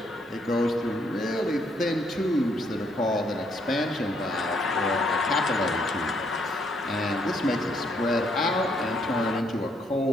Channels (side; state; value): both; normal; correlation 0.71